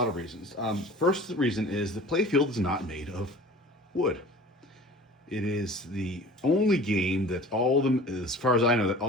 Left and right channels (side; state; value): both; normal; correlation 0.42